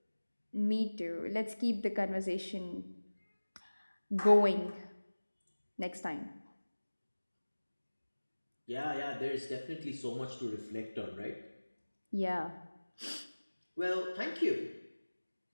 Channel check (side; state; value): both; inverted; correlation -1.00